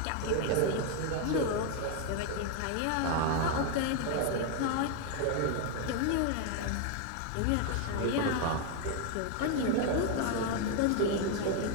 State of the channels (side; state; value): both; different; correlation 0.00